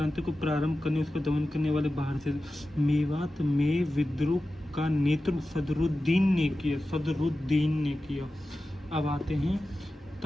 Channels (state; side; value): normal; both; correlation 0.94